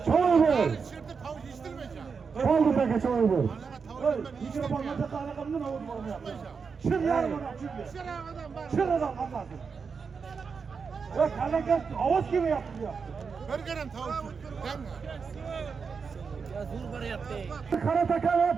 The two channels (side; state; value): left; quieter; 5.5 dB